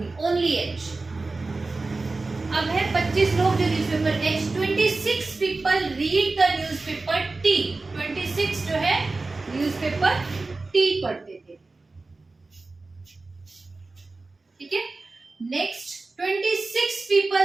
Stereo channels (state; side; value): quieter; left; 3.5 dB